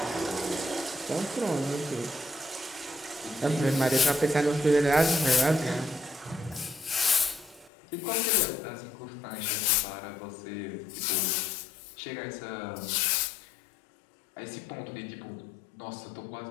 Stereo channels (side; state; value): right; drops out; at 7.7 s